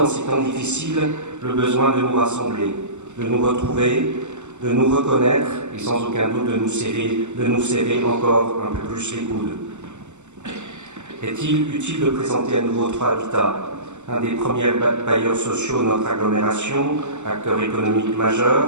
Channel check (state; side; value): late; left; 0.84 ms